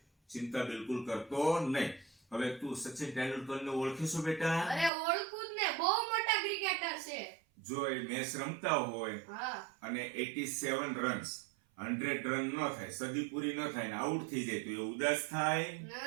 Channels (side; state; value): left; drops out; at 4.9 s